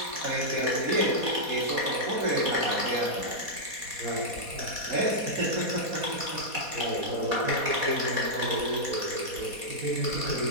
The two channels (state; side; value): late; left; 4.2 ms